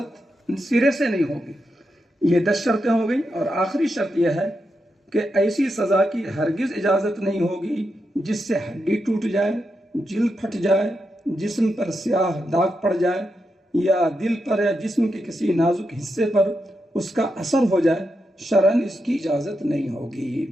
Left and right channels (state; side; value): normal; both; correlation 0.85